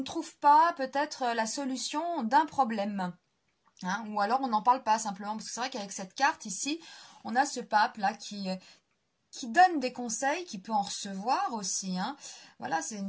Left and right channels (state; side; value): identical; both; correlation 1.00